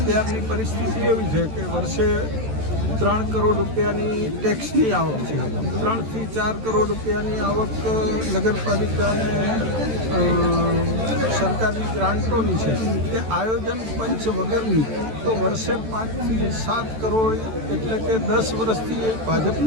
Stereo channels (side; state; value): left; late; 14 ms